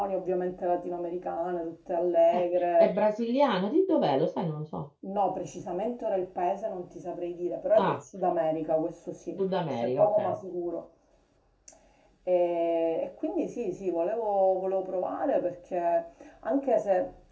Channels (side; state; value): both; identical; correlation 1.00